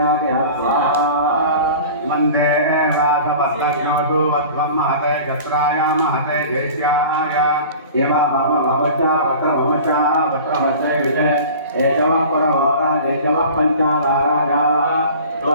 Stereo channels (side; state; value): both; inverted; correlation -0.40